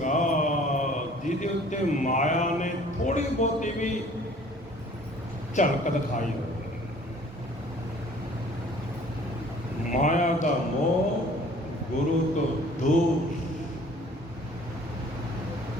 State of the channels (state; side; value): normal; both; correlation 0.52